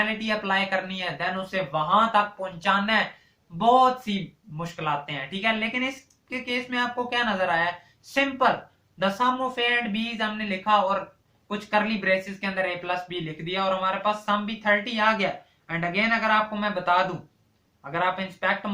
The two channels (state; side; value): identical; both; correlation 1.00